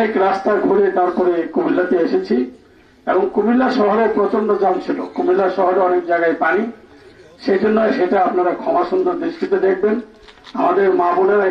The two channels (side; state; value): both; identical; correlation 1.00